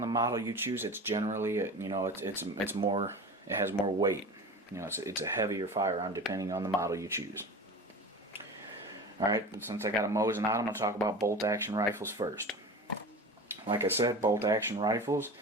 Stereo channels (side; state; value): both; normal; correlation 0.33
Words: model you choose. It's generally it's more. It has more weight. It's a heavier firearm depending on the model you choose. All right. Since I got a Mosin out, I'm going to talk about bolt action rifles first. Like I said, bolt action rifles,